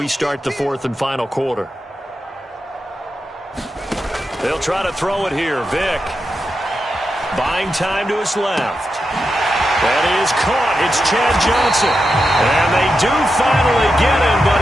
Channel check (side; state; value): both; normal; correlation 0.88